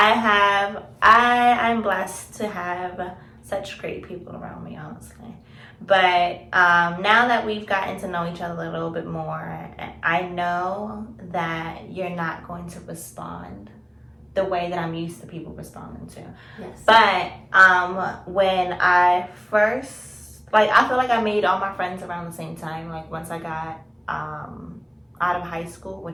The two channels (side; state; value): both; identical; correlation 1.00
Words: blessed to have such great people around me, honestly. But now that we've gotten to know each other a little bit more, I know that you're not going to respond the way that I'm used to people responding to. Yes. But when I first, like, I feel like I made all my friends around the same time. Like, once I got out of high school,